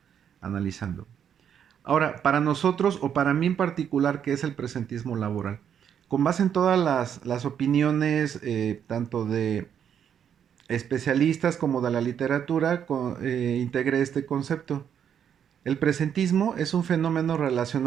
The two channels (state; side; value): quieter; left; 8.6 dB